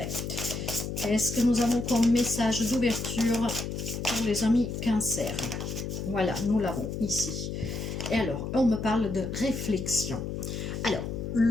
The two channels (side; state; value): left; noise; hum, 5 dB below the sound